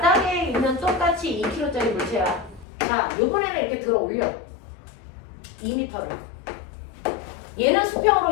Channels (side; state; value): right; drops out; at 2.7 s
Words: 있는 똑같이 2kg짜리 물체야. 자, 요번에는 이렇게 들어 올려. 2m를. 얘는 수평으로